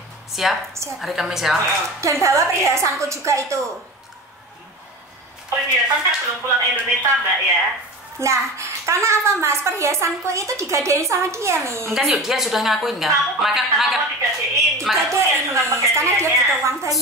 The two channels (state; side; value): normal; both; correlation 0.31